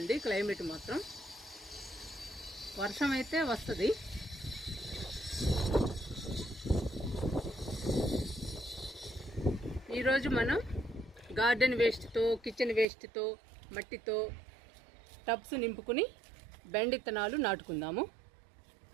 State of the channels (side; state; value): left; drops out; at 12.9 s